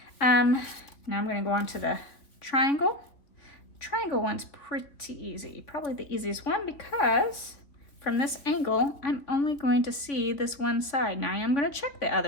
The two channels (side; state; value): right; late; 3.3 ms